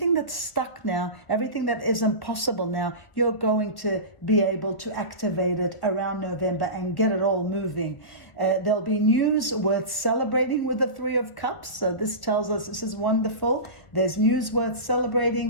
that's stuck now, everything that isn't possible now, you're going to be able to activate it around November and get it all moving. There'll be news worth celebrating with the Three of Cups. So this tells us this is wonderful. There's news worth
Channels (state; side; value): late; right; 1.6 ms